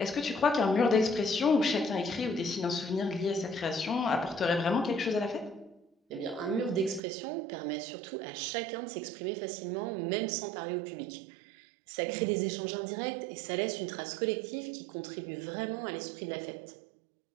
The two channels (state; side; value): drops out; left; at 7.0 s